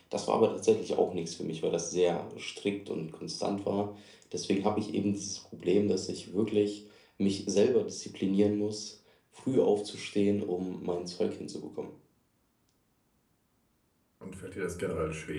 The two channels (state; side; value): identical; both; correlation 1.00